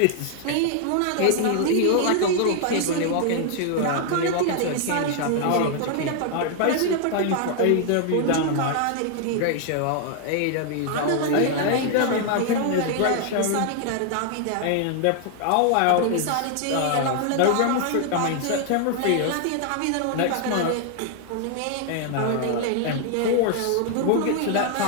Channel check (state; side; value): different; both; correlation 0.00